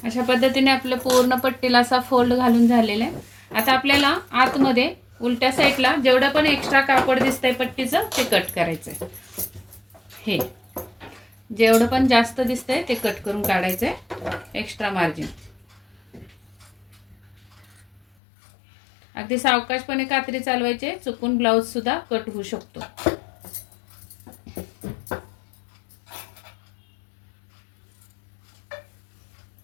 अशा पद्धतीने आपलं पूर्ण पट्टीला असा फोल्ड घालून झालेला आहे. आता आपल्याला आतमध्ये उलट्या साईडला जेवढं पण एक्स्ट्रा कापड दिसतंय पट्टीचं ते कट करायचंय. हे जेवढं पण जास्त दिसतंय ते कट करून काढायचंय एक्स्ट्रा मार्जिन. अगदी सावकाशपणे कात्री चालवायचे, चुकून ब्लाऊज सुद्धा कट होऊ शकतो.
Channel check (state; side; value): drops out; right; at 18.1 s